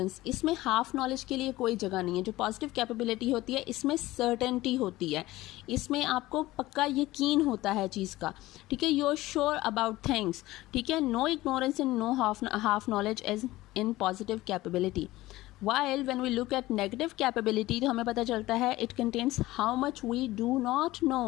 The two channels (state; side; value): quieter; right; 17.7 dB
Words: इसमें हाफ नॉलेज के लिए कोई जगह नहीं है। जो पॉजिटिव कैपेबिलिटी होती है इसमें सर्टेनिटी होती है, इसमें आपको पक्का यकीन होता है चीज़ का, ठीक है। You are sure about things, ठीक है। No ignorance and no half knowledge as in positive capability. While when we look at negative capability तो हमें पता चलता है it contains how much we do not